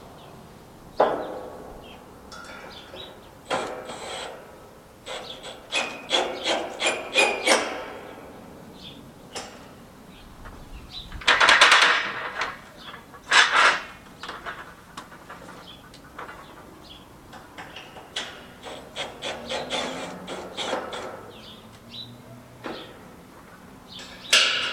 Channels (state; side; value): identical; both; correlation 1.00